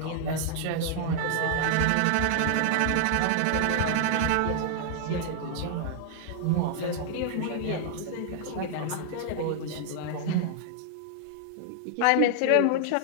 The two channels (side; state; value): both; different; correlation -0.01